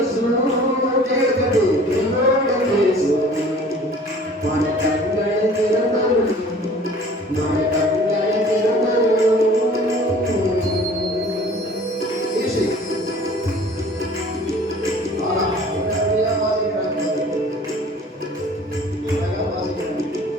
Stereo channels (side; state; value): both; normal; correlation 0.48